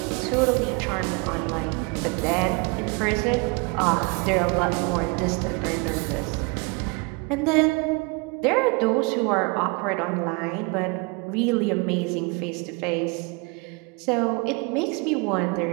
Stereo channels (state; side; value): quieter; left; 29.0 dB